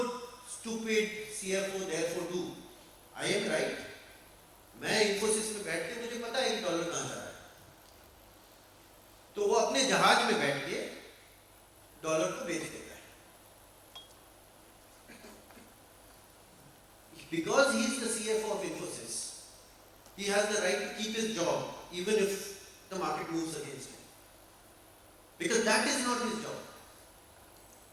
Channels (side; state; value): both; identical; correlation 1.00